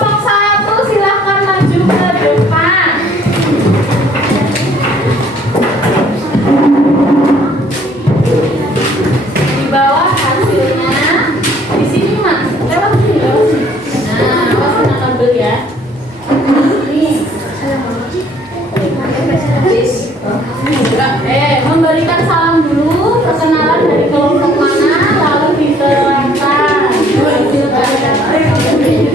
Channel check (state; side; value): normal; both; correlation 0.59